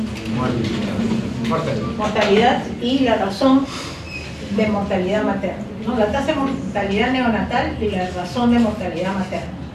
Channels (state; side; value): identical; both; correlation 1.00